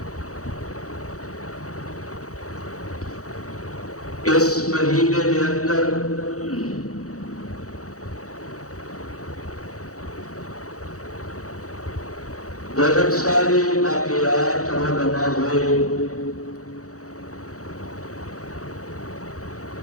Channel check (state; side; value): late; right; 0.65 ms